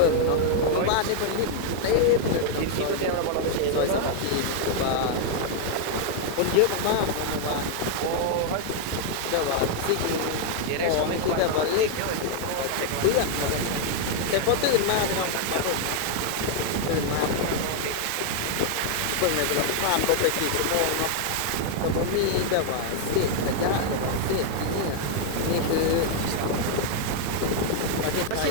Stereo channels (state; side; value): different; both; correlation 0.00